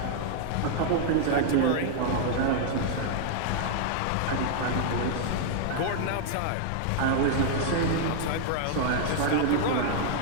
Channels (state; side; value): different; both; correlation -0.01